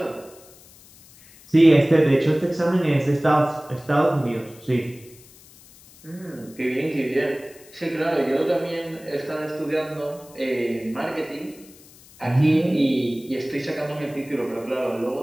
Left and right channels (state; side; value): noise; left; hiss, 24 dB below the sound